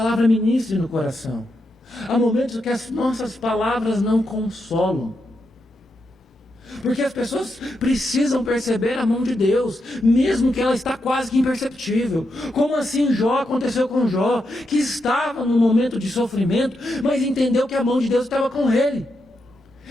ministre no coração. Há momentos que as nossas palavras não consolam. Porque as pessoas precisam perceber a mão de Deus, mesmo que ela está quase que imperceptível. Como assim Jó aconteceu com Jó, que estava num momento de sofrimento, mas entendeu que a mão de Deus estava com ele.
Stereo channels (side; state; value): both; normal; correlation 0.84